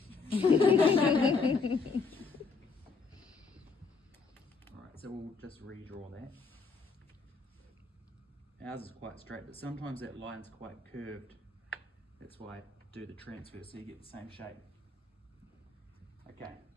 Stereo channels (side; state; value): right; quieter; 4.5 dB